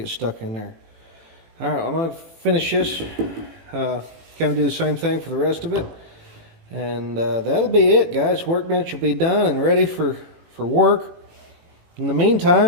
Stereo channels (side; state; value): left; late; 18 ms